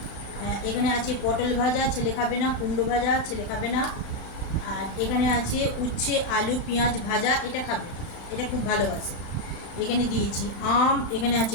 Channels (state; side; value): late; right; 36 ms